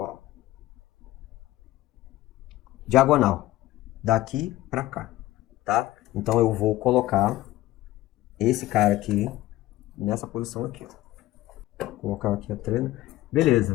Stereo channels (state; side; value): quieter; right; 16.4 dB